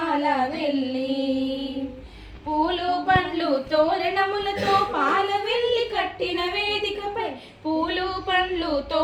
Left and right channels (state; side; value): identical; both; correlation 1.00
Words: వెళ్ళి పూలు పండ్లు తోరణములతో పాల వెళ్ళి కట్టిన వేదికపై పూలు పండ్లు